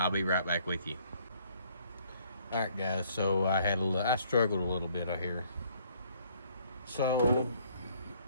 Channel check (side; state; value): both; inverted; correlation -0.63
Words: be right back with you. All right, guys. So I struggled a little bit out here. So